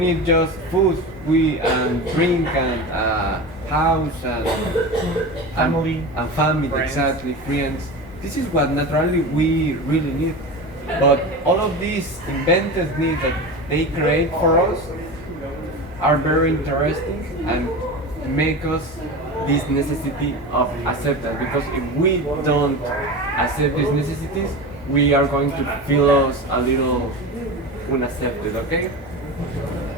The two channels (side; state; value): both; normal; correlation 0.27